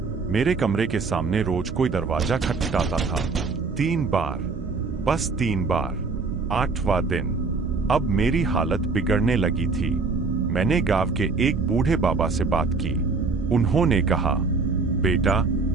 मेरे कमरे के सामने रोज कोई दरवाजा खटखटाता था। 3 बार, बस 3 बार। 8वां दिन अब मेरी हालत बिगड़ने लगी थी। मैंने गांव के एक बूढ़े बाबा से बात की। उन्होंने कहा, बेटा,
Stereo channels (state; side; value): quieter; left; 4.3 dB